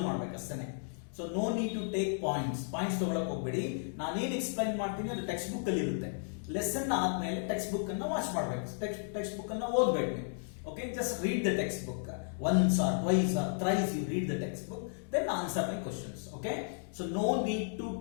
ಮಾಡಬೇಕು ಅಷ್ಟೇ. So no need to take points ತಗೊಳಕ್ ಹೋಗ್ಬೇಡಿ. ನಾನೇನ್ ಎಕ್ಸ್ಪ್ಲೈನ್ ಮಾಡ್ತೀನಿ ಅದು ಟೆಕ್ಸ್ಟ್ ಬುಕ್ ಅಲ್ಲಿ ಇರುತ್ತೆ. ಲೆಸನ್ ಆದ್ಮೇಲೆ ಟೆಕ್ಸ್ಟ್ ಬುಕ್ ಅನ್ನ ವಾಚ್ ಮಾಡಬೇಕು, ಟೆಕ್ಸ್ಟ್ ಬುಕ್ ಅನ್ನ ಓದಬೇಕು ನೀವು. Okay, just read the textbook once or twice or thrice. You read the textbook, then answer my questions. Okay, so no need to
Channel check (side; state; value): right; silent; digital silence